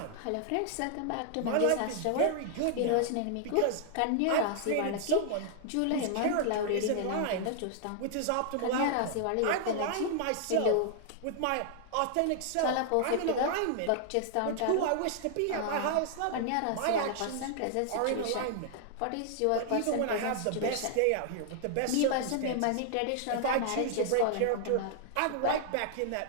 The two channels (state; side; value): different; both; correlation -0.01